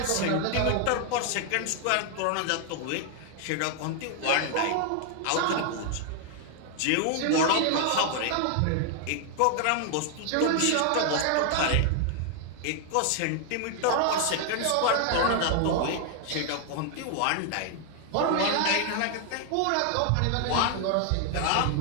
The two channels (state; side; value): different; both; correlation 0.00